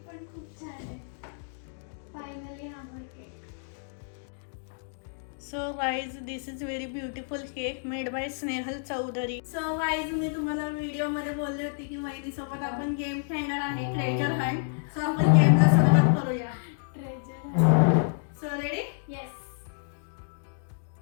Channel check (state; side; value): silent; right; digital silence